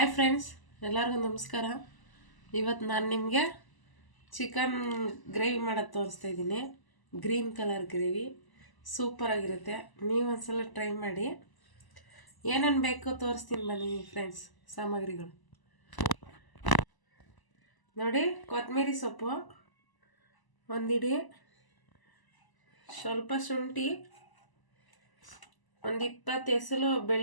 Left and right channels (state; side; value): late; right; 1.0 ms